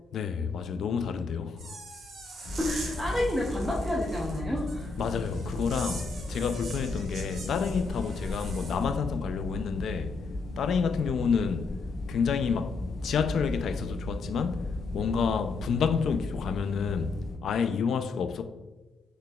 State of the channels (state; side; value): quieter; right; 4.3 dB